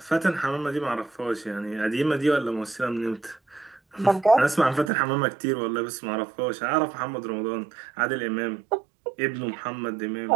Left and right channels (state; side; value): drops out; left; at 4.9 s